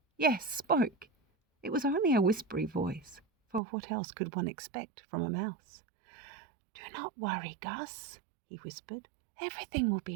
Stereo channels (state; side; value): drops out; left; at 3.6 s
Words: Yes, spoke. It was only a whispery voice, for what else could one expect from a mouse? "Do not worry, Gus," he whispered. "Everything will